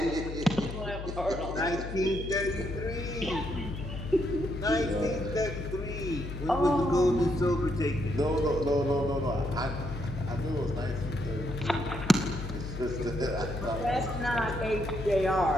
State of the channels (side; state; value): left; noise; hum, 8 dB below the sound